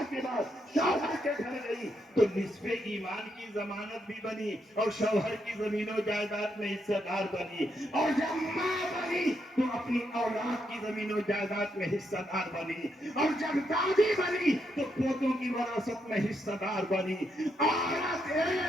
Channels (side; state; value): both; normal; correlation 0.79